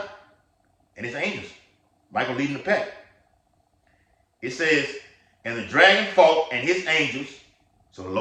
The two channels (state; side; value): identical; both; correlation 1.00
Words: and his angels. Michael leading the pack. It says, and the dragon fought and his angels. So the